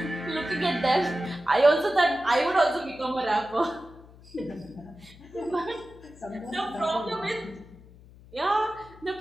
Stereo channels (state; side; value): noise; left; hum, 22 dB below the sound